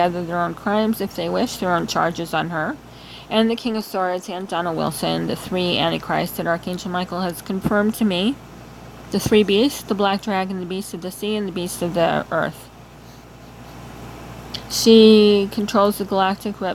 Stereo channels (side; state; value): both; identical; correlation 1.00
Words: their own crimes if they wish, their own charges on her. And the King of Swords and Donald Wilson, the three antichrists that Archangel Michael has confirmed to me. The three beasts, the black dragon, the beast of the sea, and the beast of the earth. She controls the galactic